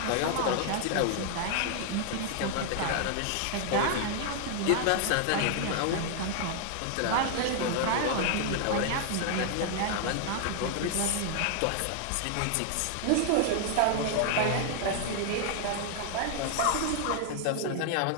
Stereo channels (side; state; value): both; different; correlation 0.00